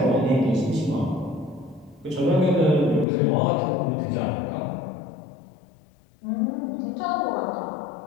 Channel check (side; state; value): right; drops out; at 3.1 s